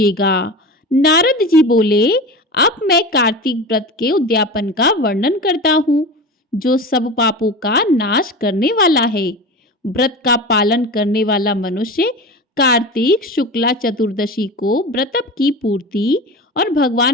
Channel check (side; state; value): both; normal; correlation 0.30